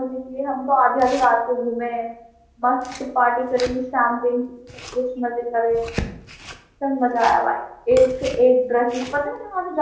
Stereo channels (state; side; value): identical; both; correlation 1.00